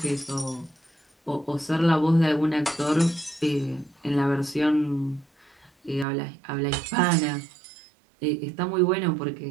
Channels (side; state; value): left; drops out; at 6.1 s